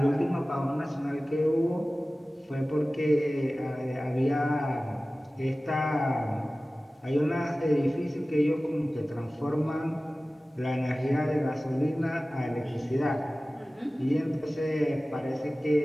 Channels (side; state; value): both; normal; correlation 0.97